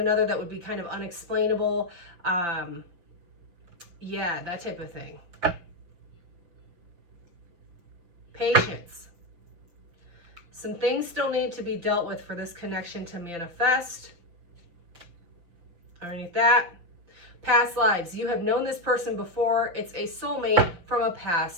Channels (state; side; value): late; left; 5.8 ms